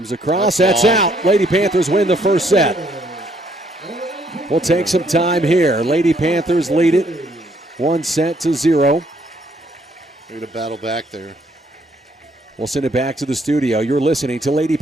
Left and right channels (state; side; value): normal; both; correlation 0.68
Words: across. That's out. Lady Panthers win the first set. We'll take some time here. Lady Panthers lead it 1-0. They're going to battle back there. We'll send it back to the studio. You're listening to Lady